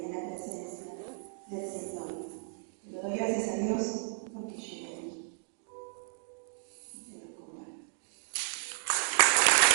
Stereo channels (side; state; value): left; silent; digital silence